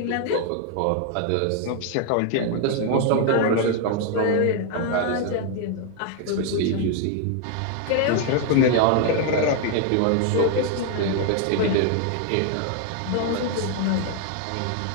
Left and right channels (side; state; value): both; different; correlation 0.00